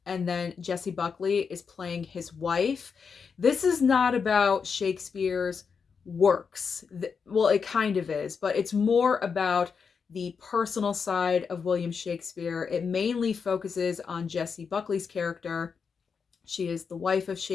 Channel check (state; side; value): quieter; right; 5.9 dB